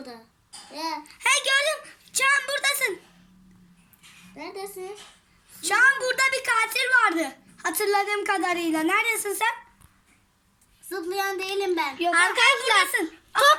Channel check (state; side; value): identical; both; correlation 1.00